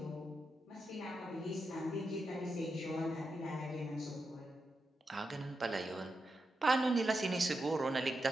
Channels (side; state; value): both; normal; correlation 0.87